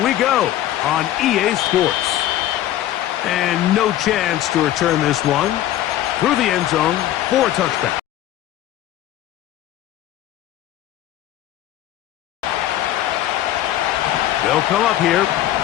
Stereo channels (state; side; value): quieter; right; 13.1 dB